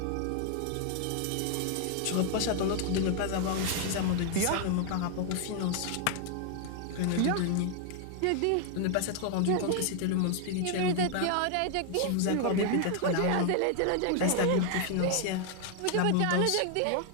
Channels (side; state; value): both; different; correlation 0.00